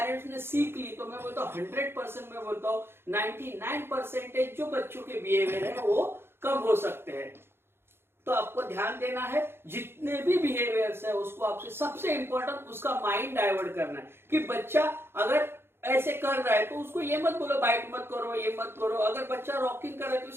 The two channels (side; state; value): left; late; 0.11 ms